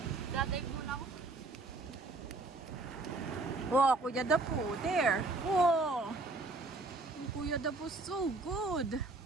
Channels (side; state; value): left; quieter; 3.3 dB